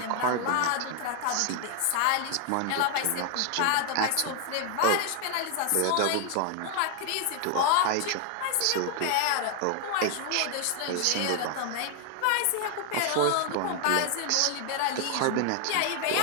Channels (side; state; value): both; different; correlation 0.00